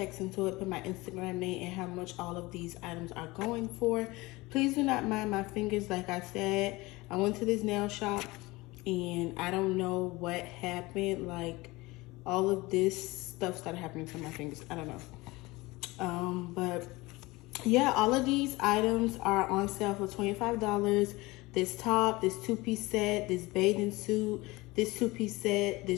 into it, put my Instagram name and how much all of these items are going for. Please do not mind my fingers. Like I said, I went to this nail shop and I don't know what happened. Like all of this stuff started happening to my fingers. I don't know. But yeah, all of these items are on sale for $25. This top, this 2-piece set, this bathing suit, this 2-piece set,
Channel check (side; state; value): right; quieter; 21.7 dB